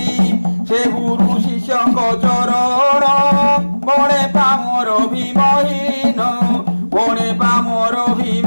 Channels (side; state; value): both; inverted; correlation -1.00